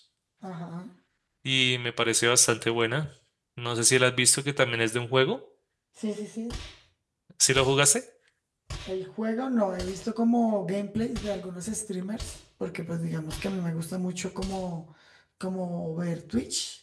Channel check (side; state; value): both; identical; correlation 1.00